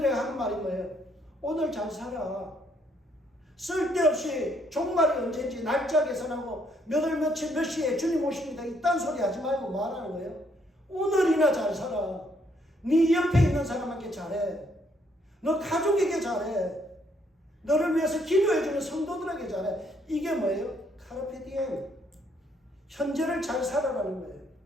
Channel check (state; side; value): normal; both; correlation 0.70